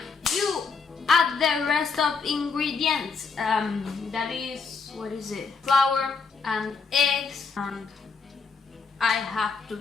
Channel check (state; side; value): quieter; right; 5.0 dB